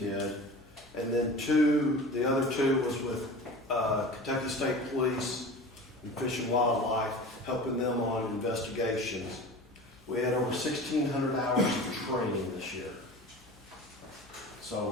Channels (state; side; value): normal; both; correlation 0.36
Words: And then the other 2 was with Kentucky State Police and Fish and Wildlife, helping them on investigations. We had over 1,600 hours of training this year.